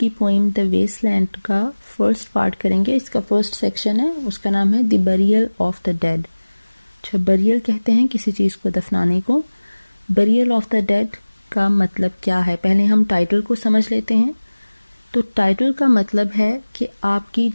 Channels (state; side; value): inverted; both; correlation -1.00